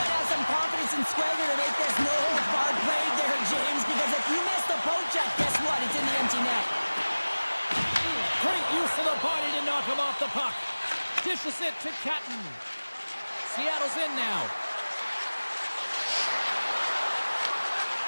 to have some confidence and swagger to make this no-holds-barred play there, James, because if you miss the poke check, guess what? It's in the empty net. Great use of the body to knock him off the puck. Dishes it to Catton. Seattle's in now.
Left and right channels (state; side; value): inverted; both; correlation -1.00